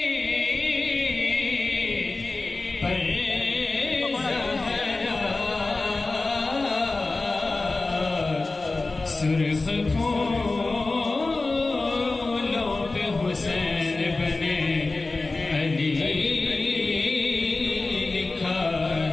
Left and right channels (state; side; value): quieter; right; 3.4 dB